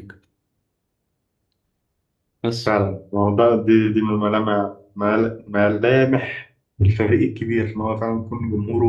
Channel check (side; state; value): both; identical; correlation 1.00